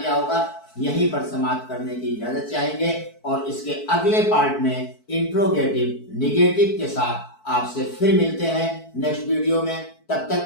होगा। यहीं पर समाप्त करने की इजाजत चाहेंगे और इसके अगले पार्ट में इंट्रोगेटिव निगेटिव के साथ आपसे फिर मिलते हैं नेक्स्ट वीडियो में। तब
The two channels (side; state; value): right; late; 4.6 ms